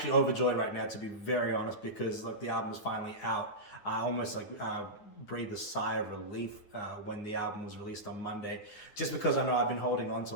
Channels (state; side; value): late; right; 9.7 ms